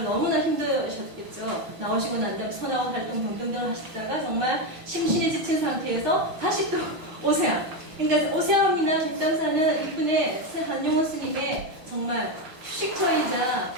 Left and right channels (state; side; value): late; left; 6.2 ms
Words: 너무나 힘드셨겠죠. 나오시고 난 다음 선하고 활동 등등을 하시다가 정말 심신이 지친 상태에서 다시 또 오세암. 그러니까 오세암이나 뒷담사는 이분의 한용호 스님의 정말 휴식처이자